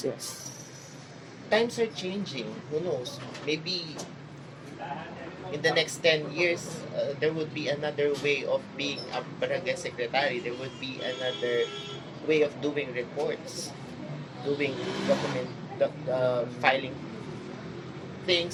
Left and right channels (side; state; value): both; identical; correlation 1.00